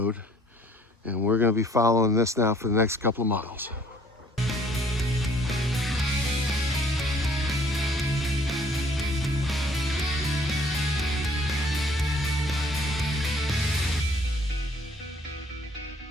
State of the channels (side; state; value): both; normal; correlation 0.58